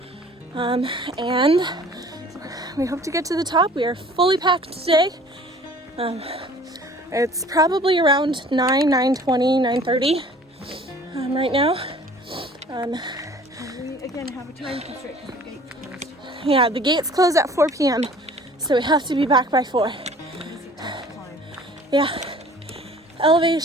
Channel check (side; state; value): both; normal; correlation 0.50